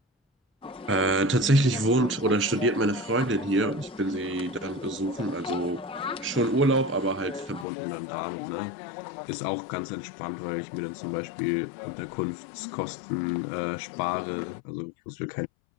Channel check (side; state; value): right; drops out; at 7.7 s